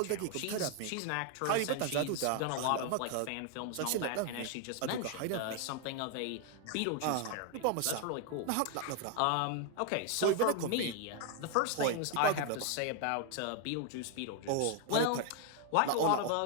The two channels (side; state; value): both; different; correlation 0.01